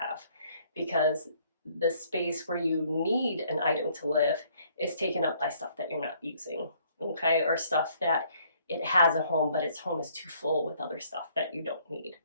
because the space where you need an item to live is taken up by stuff that you're not using, okay? Or stuff that it has a home, but its home is too full with other stuff that you don't need.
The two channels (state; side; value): inverted; both; correlation -0.63